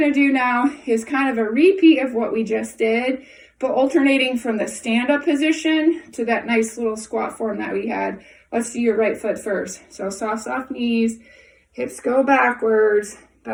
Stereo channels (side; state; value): both; identical; correlation 1.00